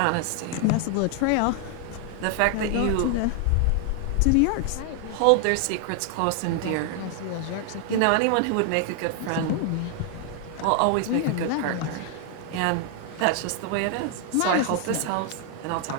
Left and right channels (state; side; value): different; both; correlation 0.00